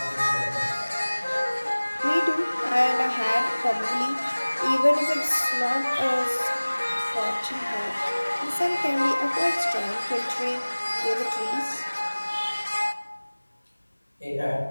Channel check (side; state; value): both; inverted; correlation -1.00